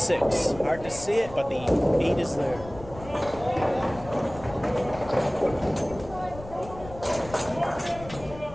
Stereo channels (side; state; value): left; noise; rumble, 16 dB below the sound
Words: Hard to see it, but the 8 is there.